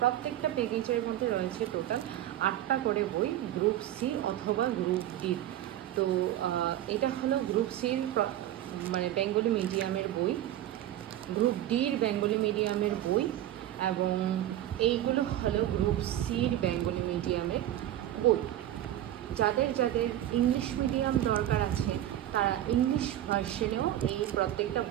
প্রত্যেকটা প্যাকেজের মধ্যে রয়েছে টোটাল 8টা করে বই গ্রুপ সি অথবা গ্রুপ ডির। তো এটা হলো গ্রুপ সির মানে বেঙ্গলি মিডিয়ামের বই, গ্রুপ ডির বেঙ্গলি মিডিয়ামের বই এবং এইগুলো হলো গ্রুপ সির বেঙ্গলি মিডিয়ামের বই। যাদের যাদের ইংলিশ মিডিয়াম দরকার আছে তারা ইংলিশ ভার্সনেও এই প্রত্যেকটা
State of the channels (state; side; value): quieter; left; 12.8 dB